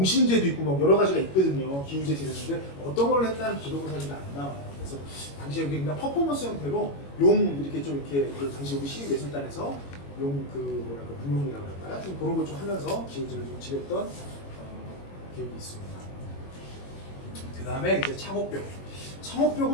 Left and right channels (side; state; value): right; late; 21 ms